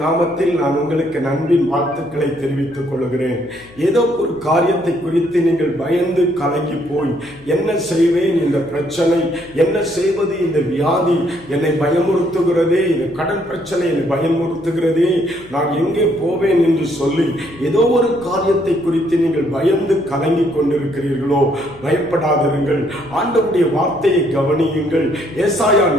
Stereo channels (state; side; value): noise; left; hum, 23 dB below the sound